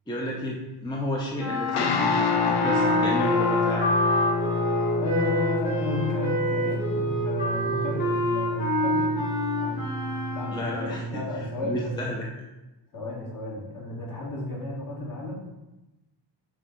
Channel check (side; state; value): both; normal; correlation 0.18